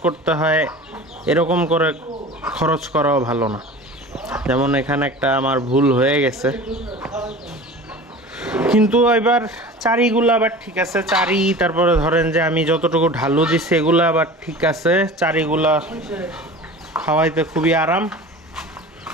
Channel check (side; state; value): both; normal; correlation 0.38